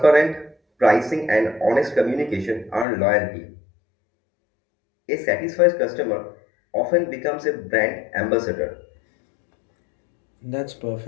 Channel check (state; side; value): drops out; right; at 2.9 s